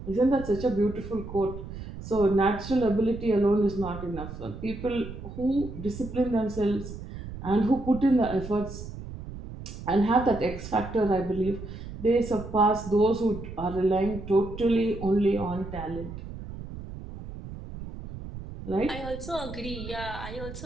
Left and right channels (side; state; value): right; noise; rumble, 11 dB below the sound